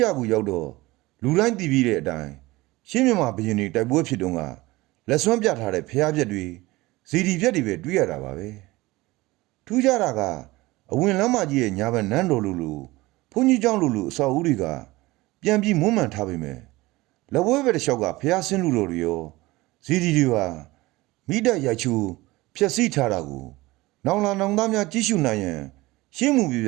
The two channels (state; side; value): quieter; left; 20.2 dB